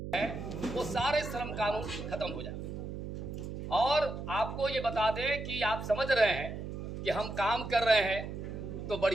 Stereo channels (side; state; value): right; noise; hum, 7 dB below the sound